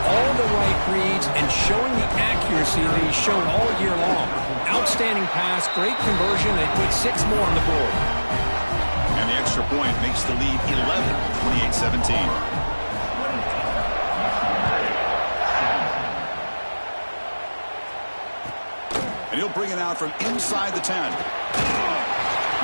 all the right reads and showing the accuracy that he's shown all year long. Outstanding pass, great conversion. They put 6 more on the board. And the extra point makes the lead 11, 28-17. And he'll bring it out from inside the 10.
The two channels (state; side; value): inverted; both; correlation -1.00